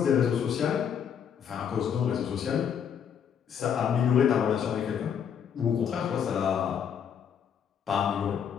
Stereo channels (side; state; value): right; quieter; 8.0 dB